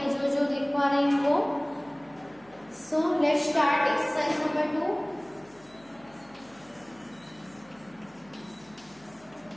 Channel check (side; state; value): left; noise; hum, 28 dB below the sound